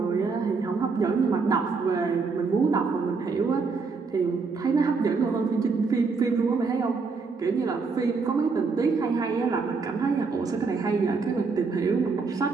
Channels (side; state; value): left; quieter; 4.6 dB